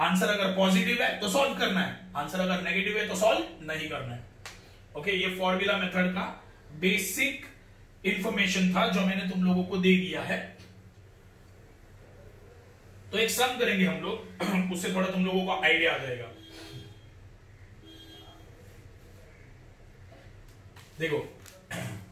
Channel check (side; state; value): both; identical; correlation 1.00